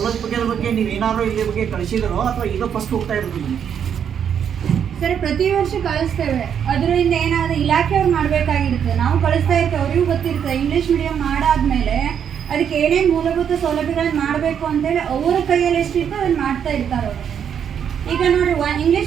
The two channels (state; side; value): quieter; left; 8.2 dB